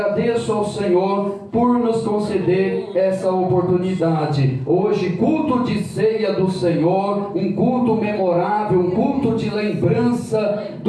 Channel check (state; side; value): identical; both; correlation 1.00